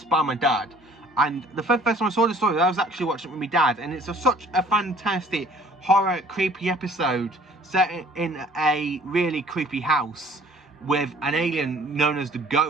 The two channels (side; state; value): both; normal; correlation 0.54